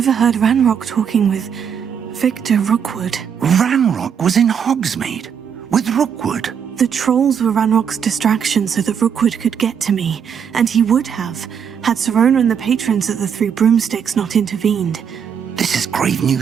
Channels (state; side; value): quieter; left; 7.6 dB